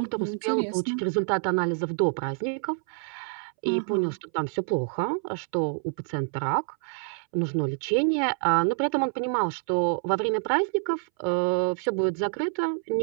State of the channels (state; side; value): silent; left; 60 dB below the other